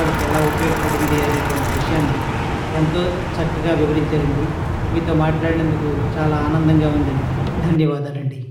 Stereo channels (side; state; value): both; identical; correlation 1.00